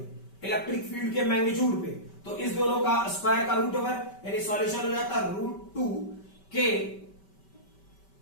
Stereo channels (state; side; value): late; right; 5.2 ms